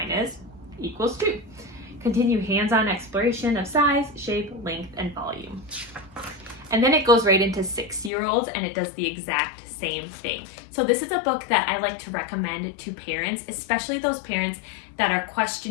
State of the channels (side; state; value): right; drops out; at 8.1 s